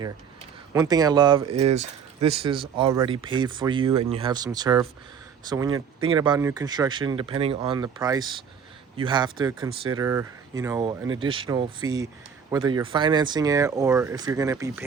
One thing I love is this is already paid for you, and you have some turf. So when you're thinking about new construction, depending on the price, you have to consider, you know, an additional fee, whether you're financing it or if you're going to be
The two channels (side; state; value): left; quieter; 7.0 dB